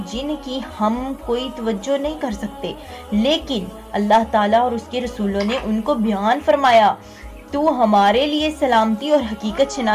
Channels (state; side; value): identical; both; correlation 1.00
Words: جن کی ہم کوئی توجہ نہیں کر سکتے لیکن اللہ تعالیٰ اور اس کے رسولوں نے ان کو بیان فرمایا، تو ہمارے لیے سلامتی اور حقیقت